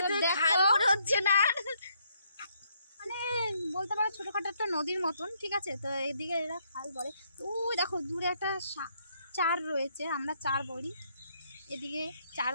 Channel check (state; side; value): inverted; both; correlation -0.72